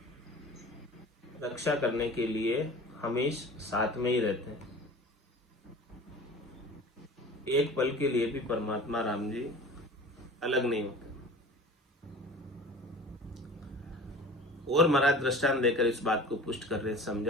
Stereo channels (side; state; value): both; normal; correlation 0.40